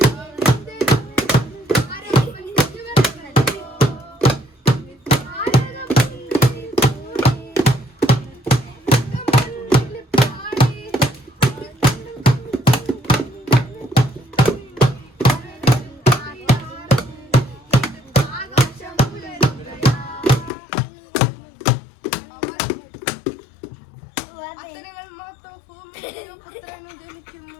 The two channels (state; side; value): drops out; right; at 20.5 s